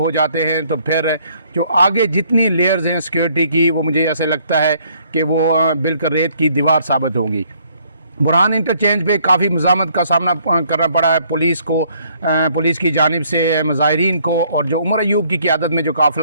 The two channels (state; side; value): inverted; both; correlation -0.64